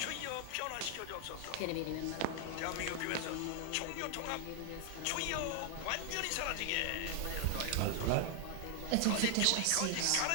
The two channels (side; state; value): both; different; correlation 0.00